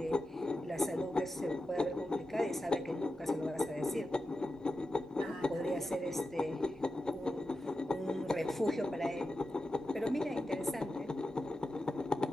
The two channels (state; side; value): normal; both; correlation 0.91